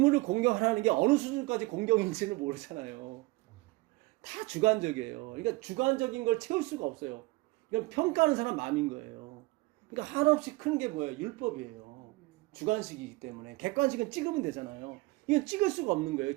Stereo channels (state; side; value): quieter; left; 22.1 dB